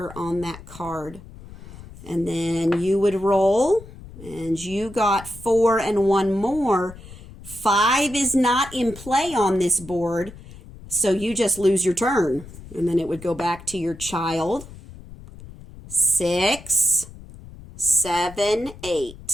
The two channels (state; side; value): noise; left; rumble, 17 dB below the sound